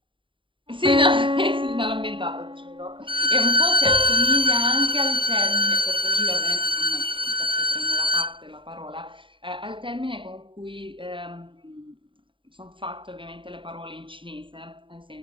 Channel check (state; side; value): late; left; 0.25 ms